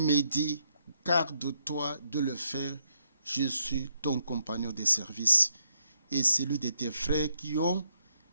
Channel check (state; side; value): inverted; both; correlation -0.76